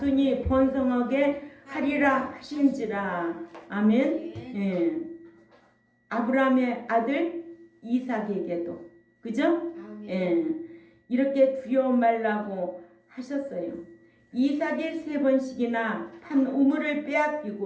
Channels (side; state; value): both; identical; correlation 1.00